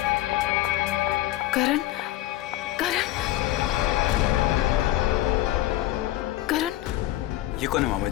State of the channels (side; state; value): right; quieter; 15.0 dB